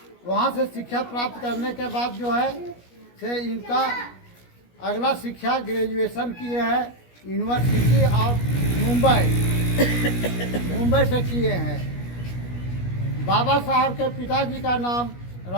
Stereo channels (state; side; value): late; right; 17 ms